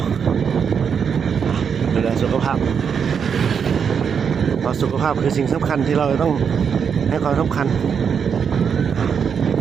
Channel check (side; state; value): left; quieter; 6.9 dB